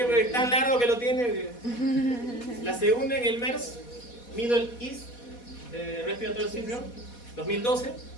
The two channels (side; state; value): right; late; 4.2 ms